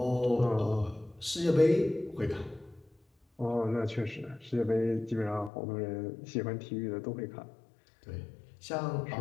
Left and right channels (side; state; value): right; drops out; at 5.5 s